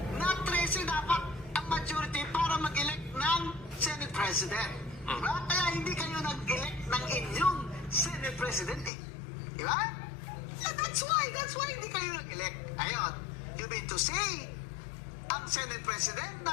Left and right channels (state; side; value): drops out; right; at 8.9 s